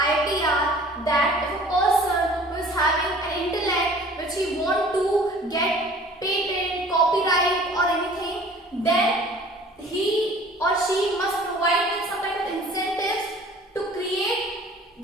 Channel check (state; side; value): normal; both; correlation 0.49